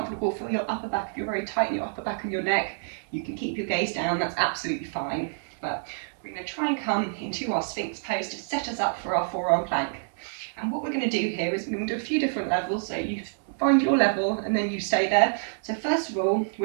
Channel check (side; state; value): left; silent; digital silence